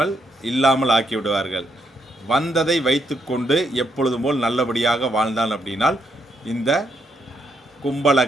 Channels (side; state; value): both; normal; correlation 0.76